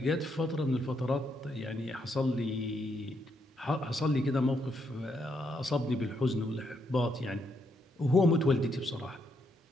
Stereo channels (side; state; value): both; normal; correlation 0.77